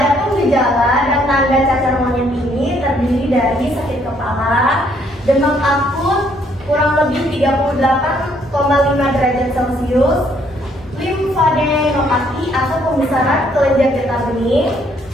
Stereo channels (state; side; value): normal; both; correlation 0.67